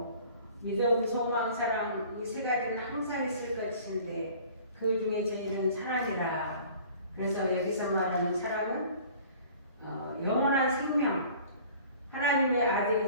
믿음, 소망, 사랑 이 세 가지는 항상 있을 것인데 그 중에 제일은 사랑이라. 그래서 여기서 말하는 사랑은 영원한 생명, 하나님의 아들이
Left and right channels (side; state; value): both; inverted; correlation -0.48